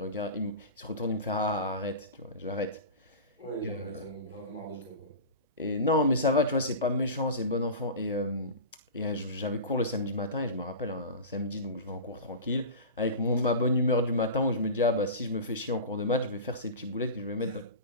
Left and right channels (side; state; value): both; inverted; correlation -0.30